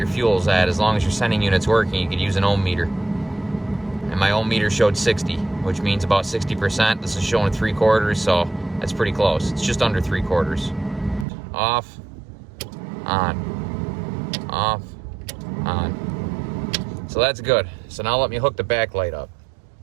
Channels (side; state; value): left; drops out; at 11.2 s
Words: fuel's at. As long as your sending unit's working, you could use an ohm meter. and my old meter showed 60, which means about 60%. This is showing 3/4, so that's pretty close. It's just under 3/4. Off, on, off, on. So that's good. So now let me hook the backlight up.